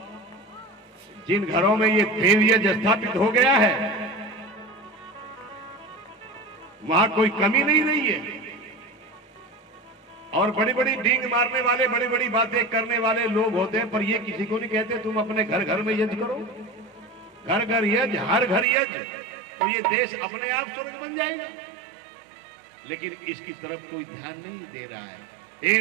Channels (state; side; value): drops out; left; at 18.7 s